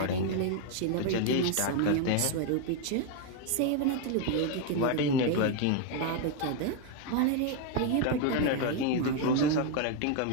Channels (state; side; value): different; both; correlation 0.01